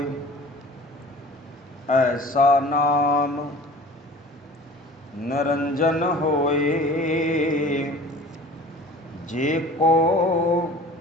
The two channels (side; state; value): both; normal; correlation 0.44